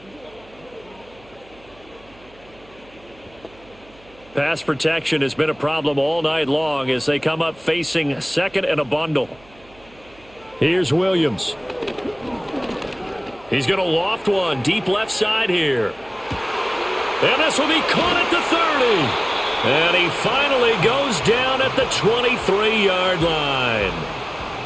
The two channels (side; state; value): right; noise; hum, 26 dB below the sound